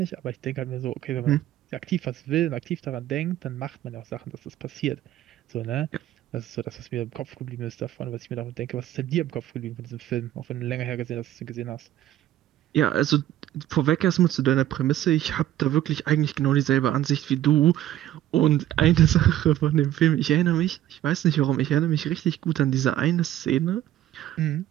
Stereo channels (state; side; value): quieter; left; 13.0 dB